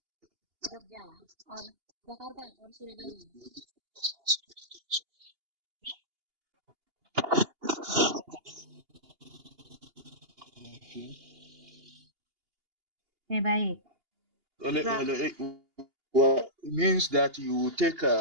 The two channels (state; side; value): late; left; 2.8 ms